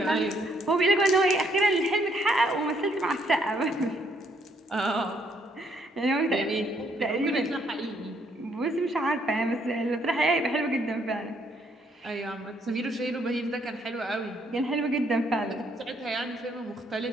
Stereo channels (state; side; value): normal; both; correlation 0.70